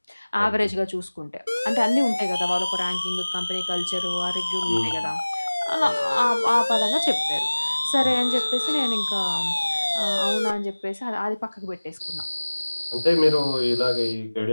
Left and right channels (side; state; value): both; inverted; correlation -1.00